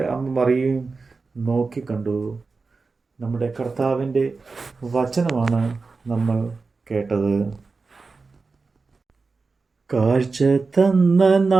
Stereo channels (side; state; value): left; quieter; 4.2 dB